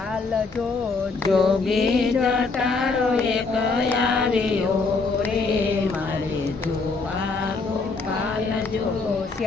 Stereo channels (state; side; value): quieter; right; 4.1 dB